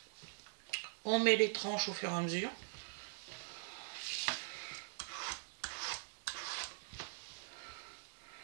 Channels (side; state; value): left; silent; digital silence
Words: on met les tranches au fur et à mesure.